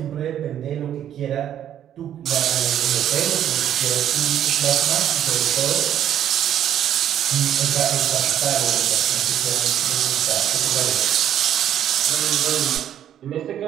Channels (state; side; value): quieter; left; 10.5 dB